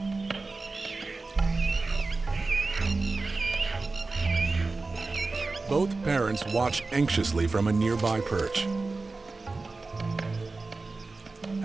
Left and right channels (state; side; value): quieter; left; 3.6 dB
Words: Both parents watch anxiously from a nearby perch.